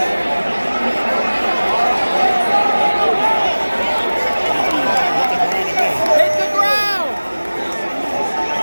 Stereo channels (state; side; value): inverted; both; correlation -1.00